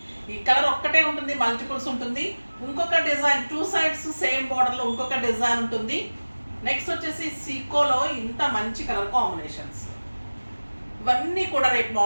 ఈ కలర్ ఒక్కటే ఉంటుంది, మల్టిపుల్స్ ఉంటుంది. ఇంకొక డిజైన్ టూ సైడ్స్ సేమ్ బార్డర్లో ఇంకొక డిజైన్ ఉంటుంది. నెక్స్ట్ వచ్చేసి సీకోలో ఇంత మంచి కలర్ కాంబినేషన్స్ ఇవన్నీ కూడా రేపు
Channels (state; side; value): inverted; both; correlation -1.00